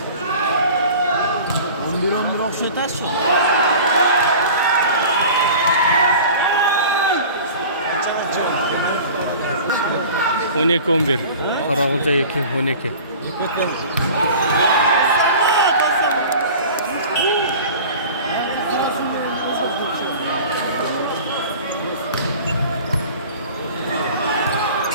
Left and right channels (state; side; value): inverted; both; correlation -0.40